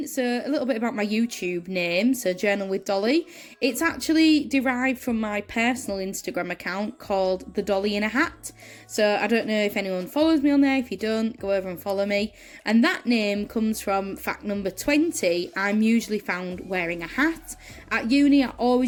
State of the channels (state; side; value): identical; both; correlation 1.00